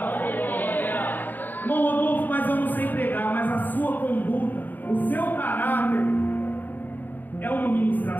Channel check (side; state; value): right; late; 0.087 ms